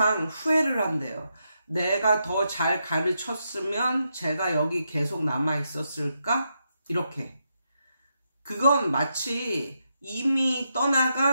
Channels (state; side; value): inverted; both; correlation -0.83